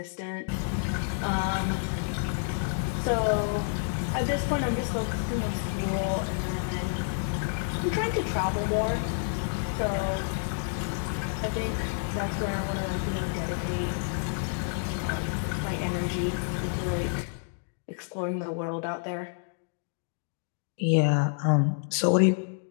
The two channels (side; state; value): right; silent; digital silence